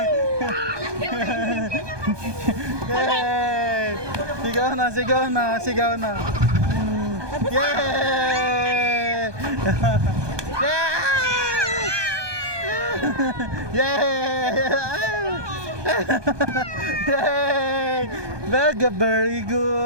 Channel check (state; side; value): late; left; 1.2 ms